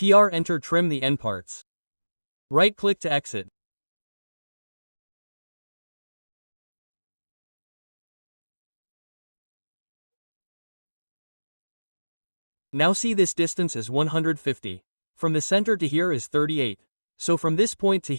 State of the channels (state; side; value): inverted; both; correlation -1.00